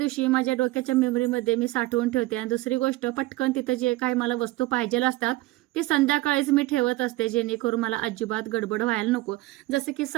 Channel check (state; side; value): quieter; left; 18.5 dB